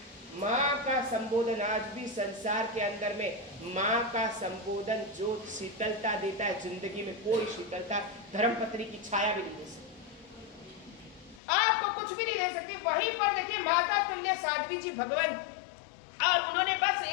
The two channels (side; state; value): right; drops out; at 11.4 s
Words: माँ का संबोधन। आज भी संसार के अंदर में माँ का संबोधन जो शीतलता देता है, जिंदगी में कोई शीतलता धर्मपत्नी की छाया भी नहीं दे सकती, आपको कुछ भी नहीं दे सकती। वहीं पर देखिए माता तुल्य साध्वी जी भगवान, और उन्होंने बस